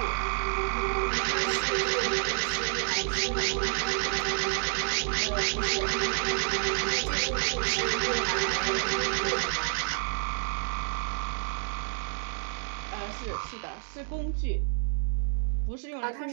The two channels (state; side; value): silent; left; digital silence